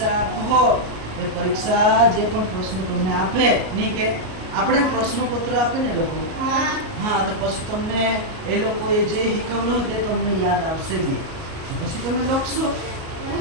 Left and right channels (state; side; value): late; left; 38 ms